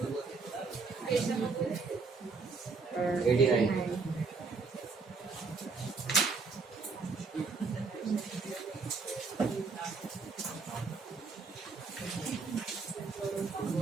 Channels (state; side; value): quieter; left; 4.4 dB